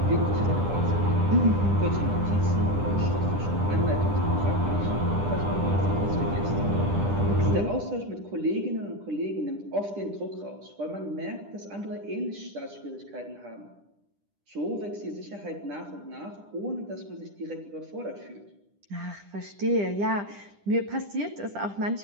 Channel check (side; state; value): left; late; 10 ms